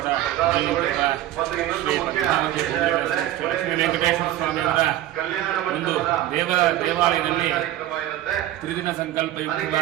ಶ್ರೀ ಪದ್ಮಾವತಿ ಶ್ರೀ ಲಕ್ಷ್ಮೀ ವೆಂಕಟೇಶ್ವರ ಸ್ವಾಮಿಯವರ ಒಂದು ದೇವಾಲಯದಲ್ಲಿ ತ್ರಿದಿನ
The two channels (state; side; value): quieter; left; 13.5 dB